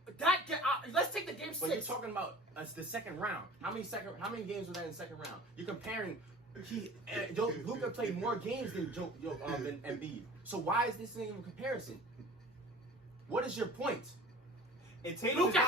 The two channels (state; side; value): normal; both; correlation 0.43